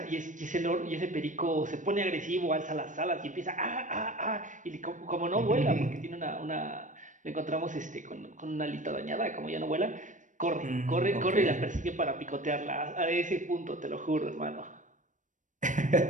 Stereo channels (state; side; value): late; left; 0.37 ms